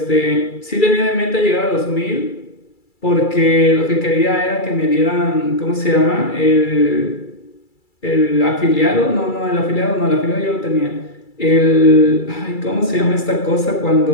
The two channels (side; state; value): right; late; 2.3 ms